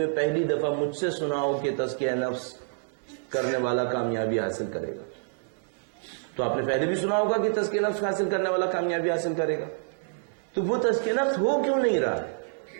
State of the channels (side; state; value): left; silent; digital silence